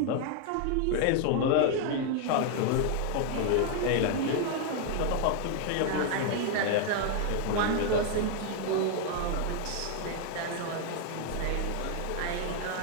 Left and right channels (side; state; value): both; different; correlation 0.00